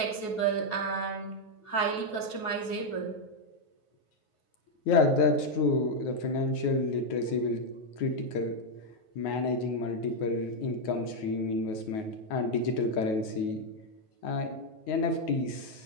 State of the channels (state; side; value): late; right; 9.4 ms